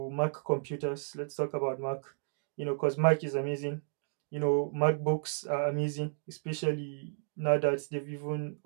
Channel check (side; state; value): left; silent; digital silence